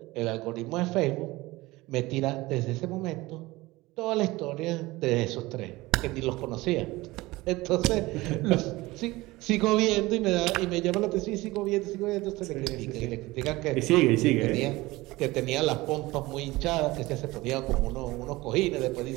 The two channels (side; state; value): left; quieter; 20.1 dB